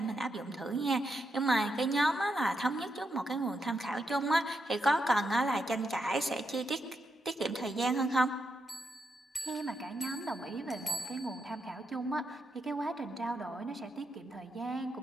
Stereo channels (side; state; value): both; normal; correlation 0.82